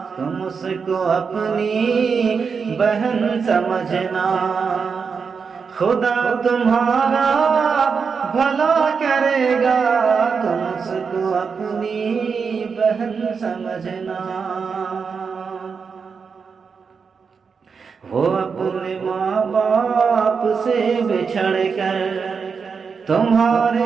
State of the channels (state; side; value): quieter; left; 5.7 dB